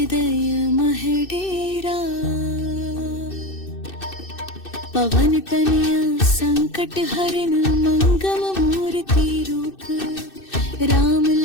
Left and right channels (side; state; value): right; late; 2.6 ms